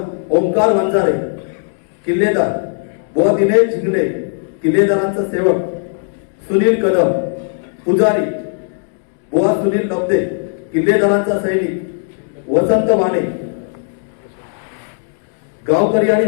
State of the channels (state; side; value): silent; right; digital silence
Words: ओंकार वंजारे. किल्लेदार बुवा दिनेश झिंगणे. किल्लेदारांचा सेवक सुनील कदम. पुजारी बुवा सुनील लब्दे. किल्लेदारांचा सैनिक वसंत वाणे. गावकरी आणि